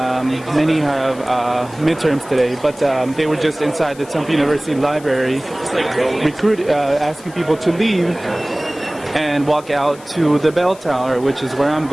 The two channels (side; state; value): left; noise; hiss, 22 dB below the sound